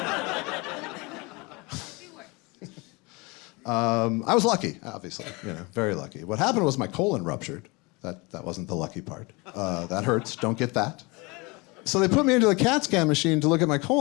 I was lucky, obviously, very lucky. What happened was my colon ruptured. That wasn't the lucky part. That hurts. Don't get that. So they put me into the CAT scan machine to look at my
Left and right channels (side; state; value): right; quieter; 26.4 dB